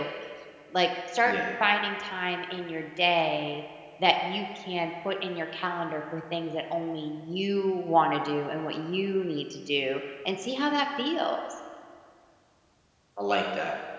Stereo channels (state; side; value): identical; both; correlation 1.00